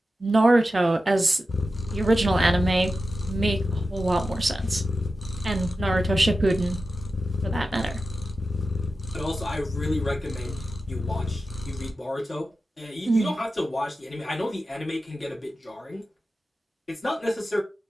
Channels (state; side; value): normal; both; correlation 0.93